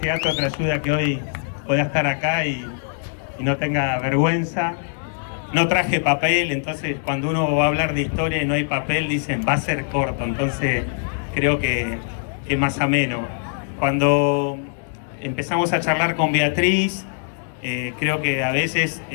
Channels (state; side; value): silent; right; digital silence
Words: te ayuda a que hoy pueda estar acá y no tenga vergüenza. No traje papel, entonces cuando uno va a hablar de historia y no hay papel, dicen va a ser corto, entonces creo que es más ameno. Cuando empezamos a charlar con Beatriz, creo que a veces